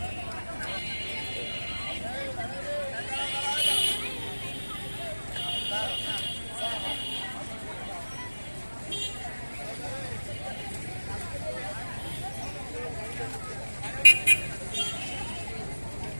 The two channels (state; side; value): inverted; both; correlation -1.00